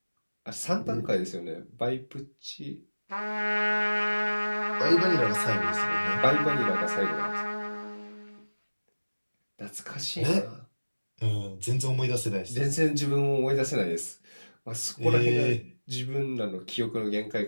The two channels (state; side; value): inverted; both; correlation -1.00